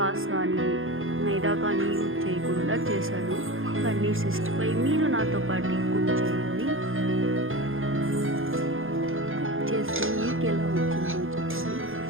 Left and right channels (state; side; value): late; left; 0.59 ms